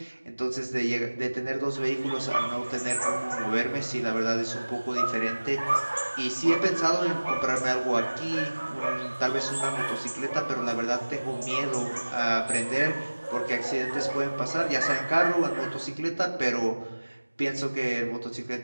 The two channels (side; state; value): both; inverted; correlation -1.00